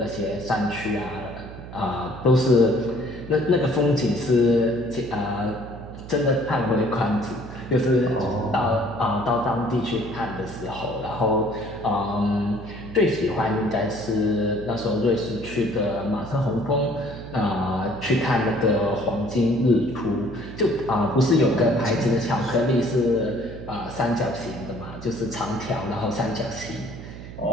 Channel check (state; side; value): noise; right; hum, 13 dB below the sound